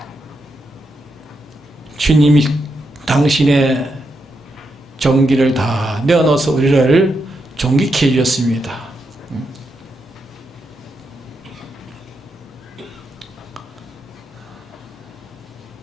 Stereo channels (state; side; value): normal; both; correlation 0.83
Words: 주님이 당신의 종기를 다 내어놓아서 우리를 존귀케 해주셨습니다.